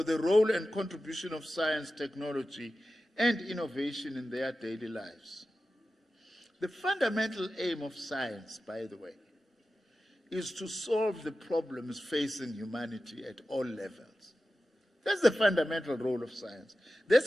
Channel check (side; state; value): both; normal; correlation 0.94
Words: the role and contribution of science, technology, and innovation in their daily lives. The fundamental aim of science, by the way, is to solve the problems facing humanity at all levels. That's the fundamental role of science.